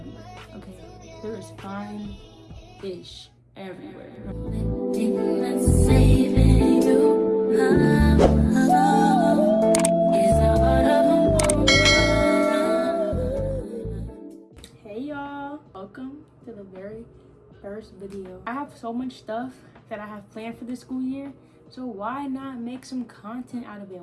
okay? There is fine-ish everywhere. Hey y'all, welcome to the very first video. I have so much stuff that I have planned for this school year, so why not make some content out of it?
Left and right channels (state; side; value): identical; both; correlation 1.00